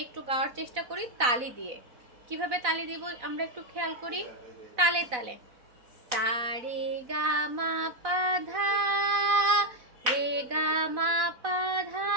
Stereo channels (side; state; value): left; late; 4.0 ms